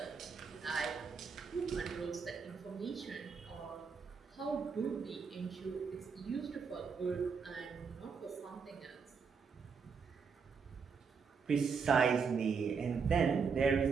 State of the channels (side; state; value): left; quieter; 5.7 dB